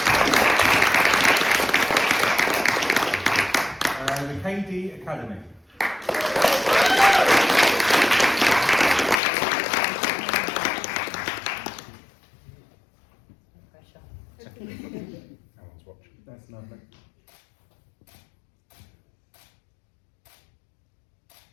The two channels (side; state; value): right; drops out; at 9.2 s